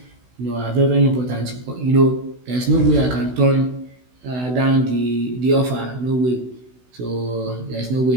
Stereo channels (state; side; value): late; left; 16 ms